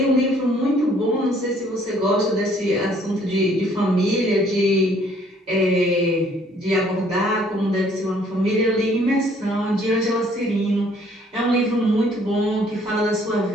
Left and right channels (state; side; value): normal; both; correlation 0.61